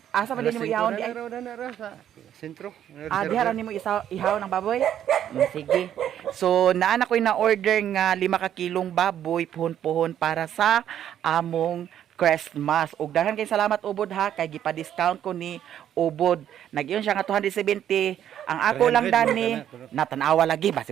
Asa man nimo ihawon di ay? Na sa sentro. Diha ra nimo ihawon ang baboy? Sige. So naana ko'y na order nga 5 ka kilong baboy puhon-puhon para sa among Christmas. Ug daghan kay salamat Ubod ha kay gipa-discount ko ni Ubod. Nag-iyon siya nga 270. Ang ako lang 300 dani mo natanawa lagi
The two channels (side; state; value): left; quieter; 10.4 dB